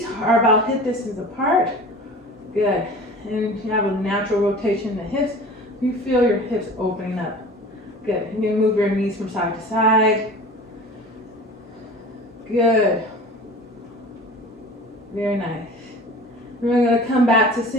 are about hip distance apart. Good, and you have a natural rotation in the hips. You feel your hips opening up. Good, and you move your knees from side to side. Good. Very nice. We're going to come back to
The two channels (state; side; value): normal; both; correlation 0.40